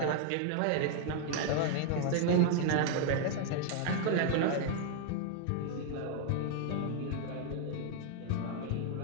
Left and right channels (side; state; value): both; different; correlation 0.00